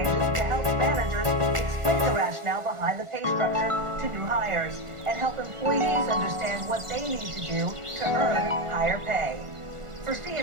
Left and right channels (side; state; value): left; late; 1.4 ms